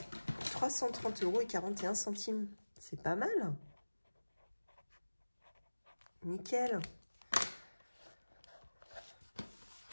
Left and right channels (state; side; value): inverted; both; correlation -1.00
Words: 330,41 €. C'est pas mal. Nickel.